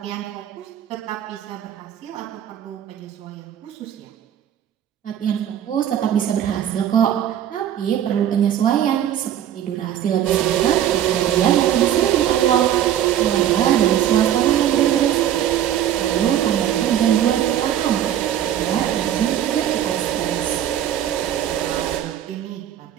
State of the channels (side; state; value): left; quieter; 10.8 dB